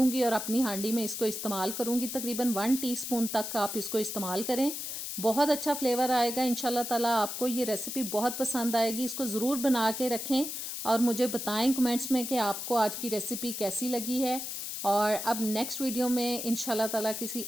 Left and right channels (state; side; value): noise; left; hiss, 5 dB below the sound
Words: और अपनी हांडी में इसको इस्तेमाल करूंगी। तकरीबन 1 टीस्पून तक आप इसको इस्तेमाल करें, बहुत अच्छा फ्लेवर आएगा इंशाल्लाह ताला। आपको ये रेसिपी बहुत पसंद आएगी। इसको ज़रूर बना के रखें और मुझे बताएं कमेंट्स में कि आपको आज की रेसिपी कैसी लगी है। और अब नेक्स्ट वीडियो में इंशाल्लाह ताला किसी